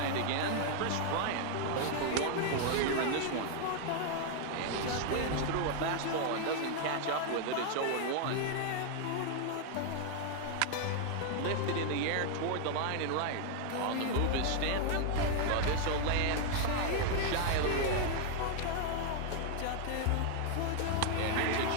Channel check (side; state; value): both; different; correlation 0.00